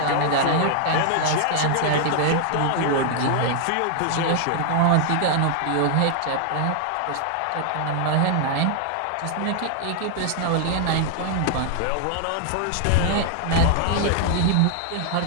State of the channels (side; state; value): both; different; correlation 0.00